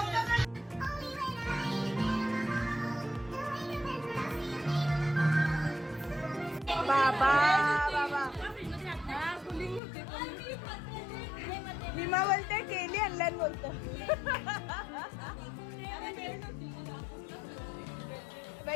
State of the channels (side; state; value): right; drops out; at 9.8 s